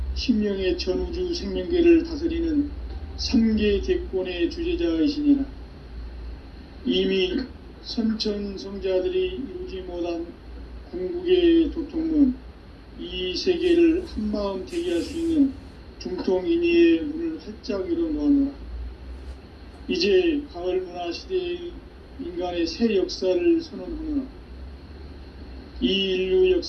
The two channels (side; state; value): both; identical; correlation 1.00